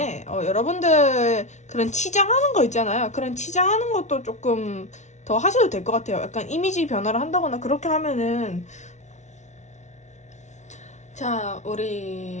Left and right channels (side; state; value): right; late; 0.33 ms